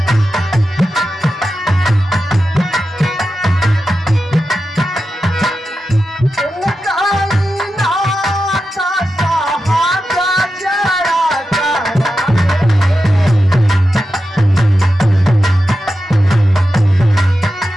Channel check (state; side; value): normal; both; correlation 0.90